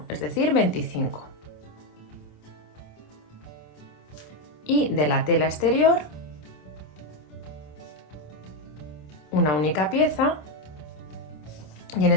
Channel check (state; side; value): late; right; 27 ms